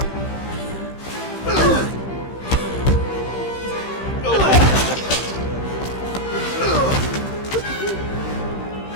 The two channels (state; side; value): late; right; 15 ms